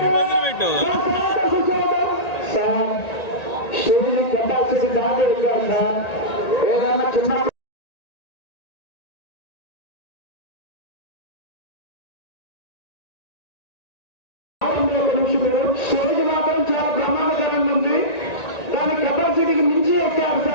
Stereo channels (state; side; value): late; right; 1.9 ms